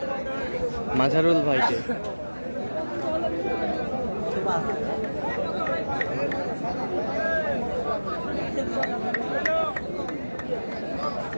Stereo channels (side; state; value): both; inverted; correlation -1.00